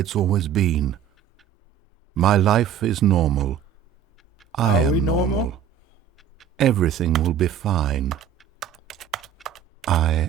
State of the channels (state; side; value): quieter; left; 8.7 dB